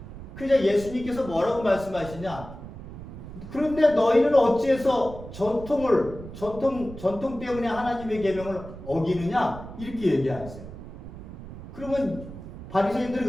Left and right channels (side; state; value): right; noise; rumble, 13 dB below the sound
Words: 그래서 예수님께서 뭐라고 말씀하시냐? 그런데 너희는 어찌해서 전통 때문에 하나님의 계명을 어기느냐? 이렇게 얘기하세요. 그러면 바리새인들은